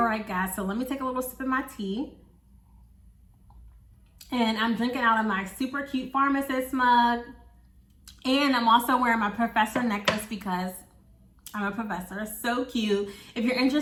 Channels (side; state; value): both; identical; correlation 1.00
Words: right, guys, so let me take a little sip of my tea. And I'm drinking out of my super cute pharmacist mug. And I'm also wearing my professor necklace because I'm a professor. So cute. If you're